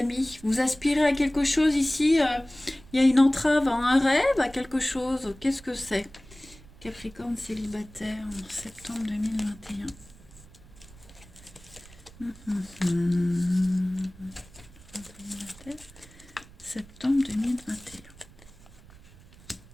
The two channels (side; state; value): right; noise; rumble, 22 dB below the sound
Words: vous aspirez à quelque chose ici, il y a une entrave à un rêve, à quelque chose, qu'est-ce que c'est? Capricorne célibataire en septembre 2021. Septembre 2021.